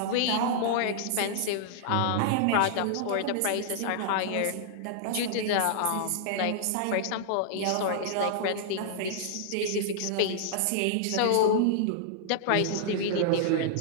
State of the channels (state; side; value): different; both; correlation -0.01